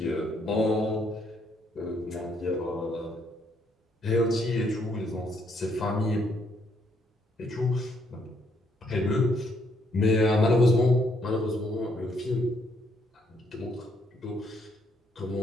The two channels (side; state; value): both; normal; correlation 0.71